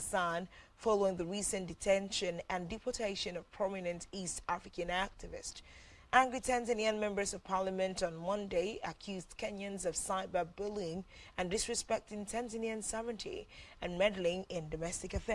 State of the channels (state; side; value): identical; both; correlation 1.00